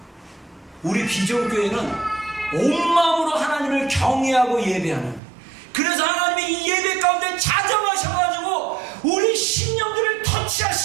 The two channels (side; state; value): left; drops out; at 5.2 s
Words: 우리 비전교회는 온 마음으로 하나님을 경외하고 예배하는, 그래서 하나님이 이 예배 가운데 자정하셔가지고 우리 심령들을